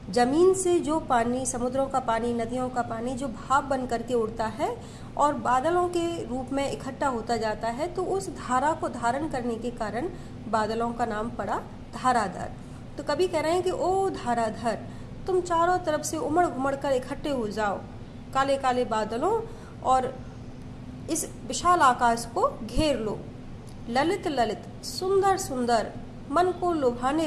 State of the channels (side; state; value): both; identical; correlation 1.00